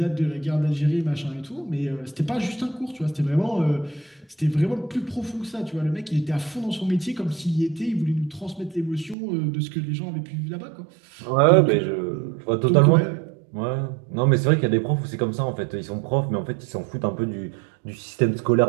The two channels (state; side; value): drops out; left; at 9.2 s